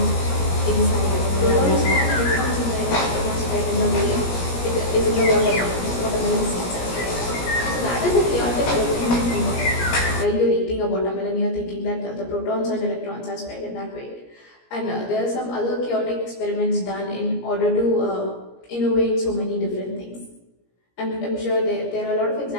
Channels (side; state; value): right; late; 17 ms